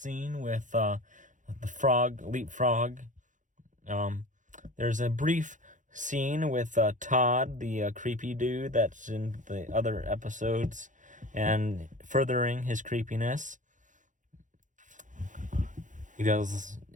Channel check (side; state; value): left; late; 0.37 ms